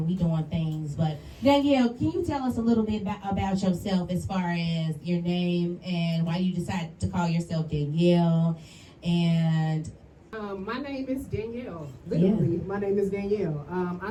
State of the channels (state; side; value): identical; both; correlation 1.00